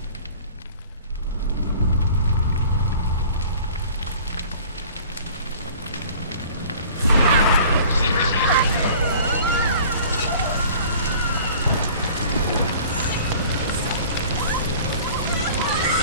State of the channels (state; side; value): inverted; both; correlation -0.47